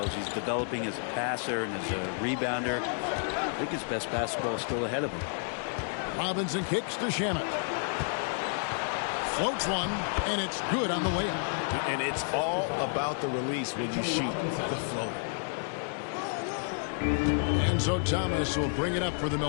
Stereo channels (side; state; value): right; silent; 57 dB below the other